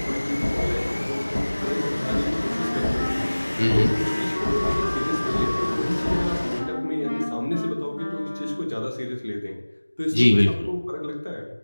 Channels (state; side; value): inverted; both; correlation -1.00